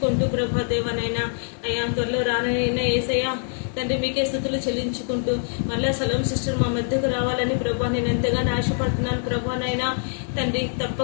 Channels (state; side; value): silent; right; digital silence